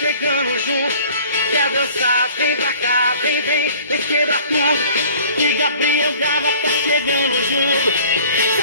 chegando junto. Quer dançar, vem pra cá, vem quebra tudo. Que Gabriel Gava tá chegando junto. Se a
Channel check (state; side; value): inverted; both; correlation -0.49